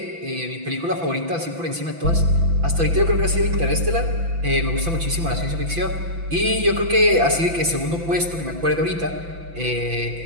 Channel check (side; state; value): left; late; 6.0 ms